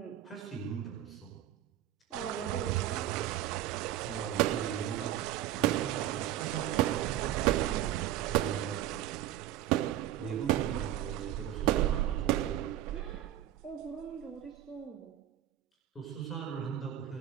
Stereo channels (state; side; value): quieter; left; 12.6 dB